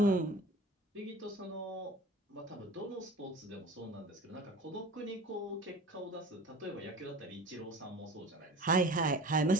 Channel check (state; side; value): normal; both; correlation 0.40